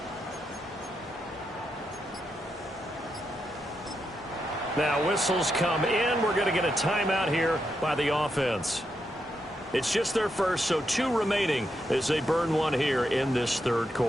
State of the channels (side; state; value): both; normal; correlation 0.83